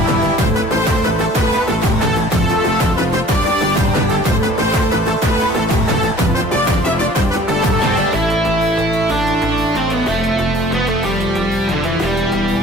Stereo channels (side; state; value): both; normal; correlation 0.51